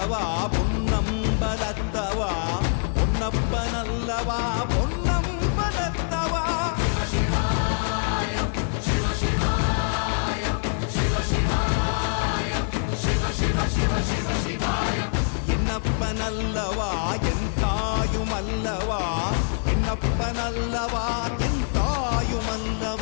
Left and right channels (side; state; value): right; silent; 62 dB below the other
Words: பொன்னம்பலத்தவா, பொன்னப்பனல்லவா பொன்னம்பலத்தவா. என்னப்பனல்லவா என் தாயுமல்லவா, என்னப்பனல்லவா என்